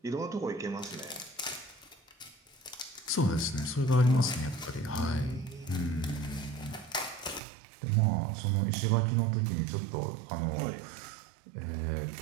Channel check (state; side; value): drops out; left; at 7.4 s